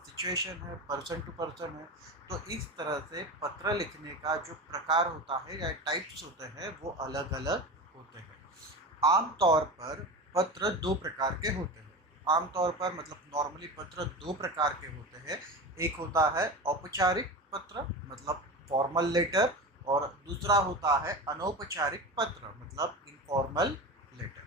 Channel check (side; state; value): both; normal; correlation 0.27